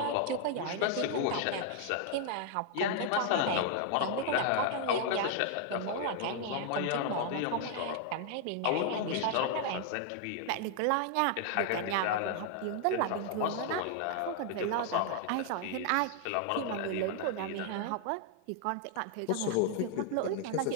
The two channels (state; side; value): different; both; correlation 0.00